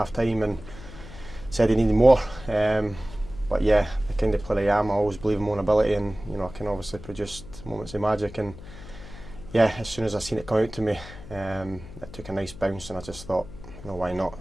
time and said he needed more. But yeah, the kind of player I am, I always believe in my own ability, and I can obviously produce moments of magic. And yeah, as soon as I seen it come out to me, it took a nice bounce, and I just thought, why not?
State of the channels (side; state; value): left; noise; hum, 15 dB below the sound